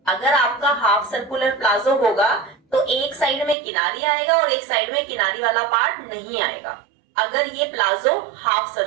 अगर आपका हाफ सर्कुलर प्लाजो होगा तो एक साइड में किनारी आएगा और एक साइड में किनारी वाला पार्ट नहीं आएगा, अगर ये प्लाजो हाफ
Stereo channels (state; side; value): drops out; left; at 3.6 s